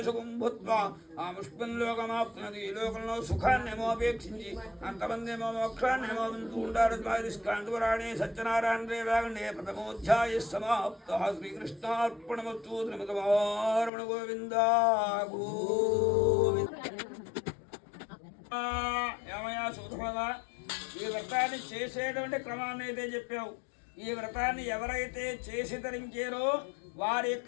సుఖం భూత్వా ఆ ముష్పంలోకమాప్తున్నది. ఈ లోకంలో సుఖాన్ని ఏమో అపేక్షించి అంతమంది ఏమో మోక్షాన్ని ఏమో వింటూ ఉంటారు. స్కాంతురాణి సత్యనారాయణ రేవాగండే ప్రథమోధ్యాయ సమాప్త. శ్రీకృష్ణార్పణమస్తు. శ్రీమతమారమణ గోవిందా ఏమయ్యా సూత్రమా, ఈ వ్రతాన్ని చేసేటువంటి క్రమాన్ని అయితే చెప్పావు. ఈ వ్రతాన్ని ఎవరైతే చేసి ధరించారో వారి యొక్క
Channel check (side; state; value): right; drops out; at 13.9 s